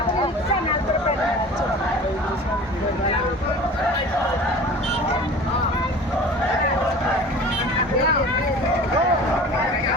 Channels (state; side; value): normal; both; correlation 0.41